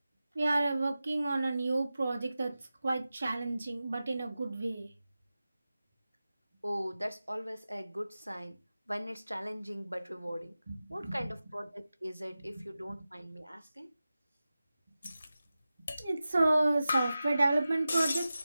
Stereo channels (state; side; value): inverted; both; correlation -0.94